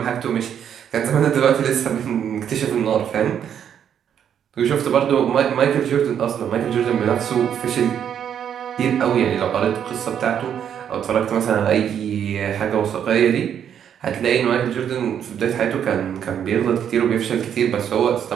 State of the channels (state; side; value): quieter; left; 8.9 dB